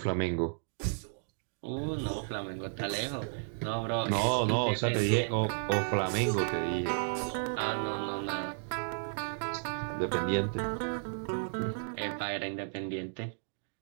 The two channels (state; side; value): silent; left; digital silence